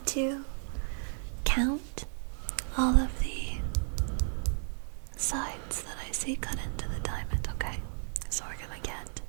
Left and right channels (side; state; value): left; silent; 56 dB below the other